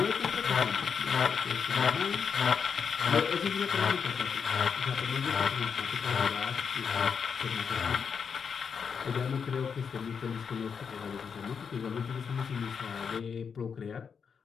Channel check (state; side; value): quieter; right; 6.4 dB